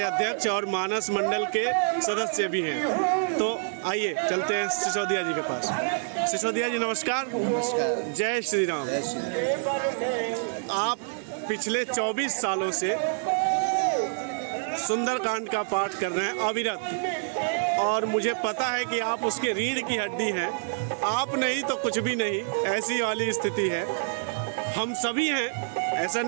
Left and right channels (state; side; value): silent; left; digital silence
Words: अध्यक्ष और मानस मंडल के सदस्य भी हैं। तो आइए चलते हैं सिसोदिया जी के पास। सिसोदिया जी नमस्कार। नमस्कार। जय श्री राम। जय श्री राम। आप पिछले 24 सालों से सुंदरकांड का पाठ कर रहे हैं अविरत, और मुझे पता है कि आप उसके रीढ़ की हड्डी हैं। आप नहीं तो कुछ भी नहीं, ऐसी वाली स्थिति है। हम सभी हैं, ऐसा